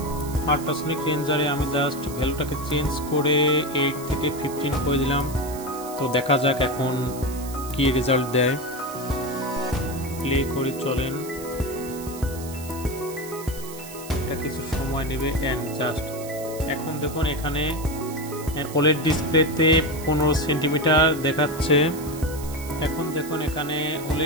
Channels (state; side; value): noise; right; hiss, 14 dB below the sound